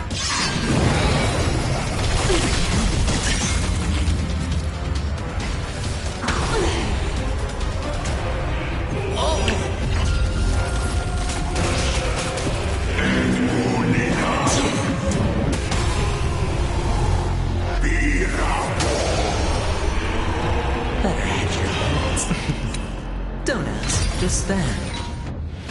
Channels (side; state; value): both; identical; correlation 1.00